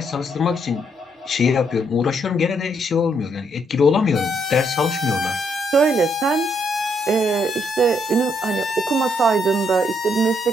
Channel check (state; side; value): normal; both; correlation 0.73